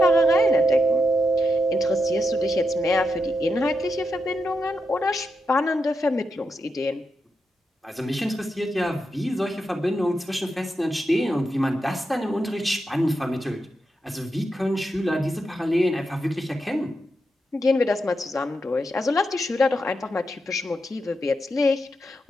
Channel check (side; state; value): both; normal; correlation 0.85